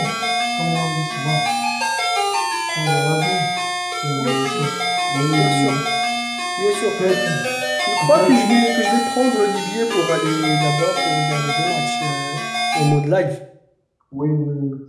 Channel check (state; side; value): identical; both; correlation 1.00